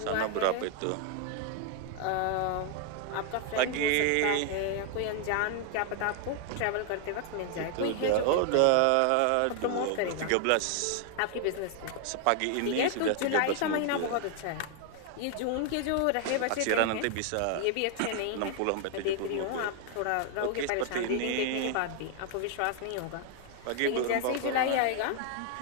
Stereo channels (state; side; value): different; both; correlation 0.00